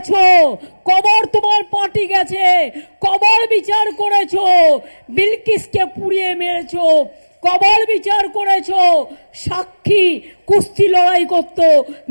কবার তোমার পার্টি গেছে, কবার বিচার করেছো, বিলকিসকে পুড়িয়ে মেরেছো, কবার বিচার করেছো, সাক্ষী কুস্তি লড়াই করত,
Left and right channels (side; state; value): both; inverted; correlation -1.00